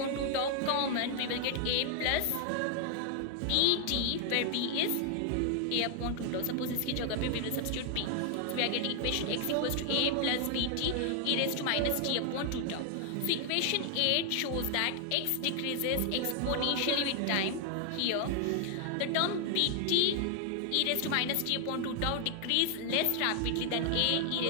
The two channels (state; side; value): different; both; correlation 0.00